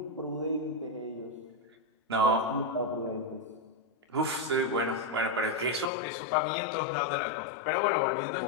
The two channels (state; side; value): drops out; right; at 5.9 s